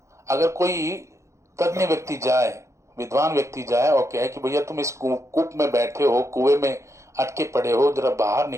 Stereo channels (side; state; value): left; late; 0.14 ms